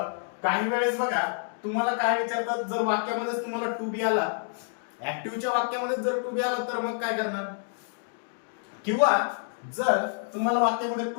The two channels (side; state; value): right; silent; digital silence